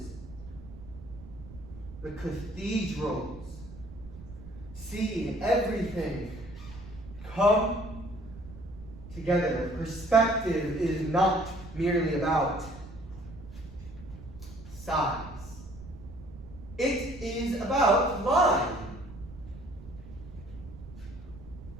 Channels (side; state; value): right; noise; rumble, 15 dB below the sound